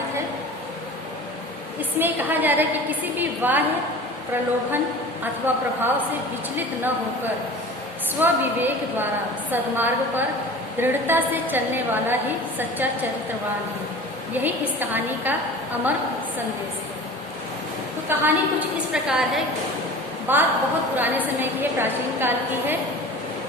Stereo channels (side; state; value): both; normal; correlation 0.38